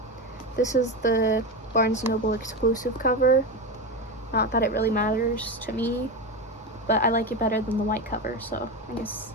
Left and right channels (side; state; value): both; normal; correlation 0.18